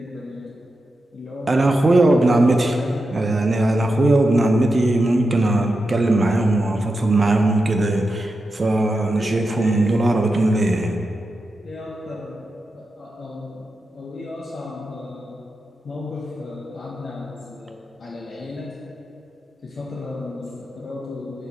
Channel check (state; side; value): normal; both; correlation 0.89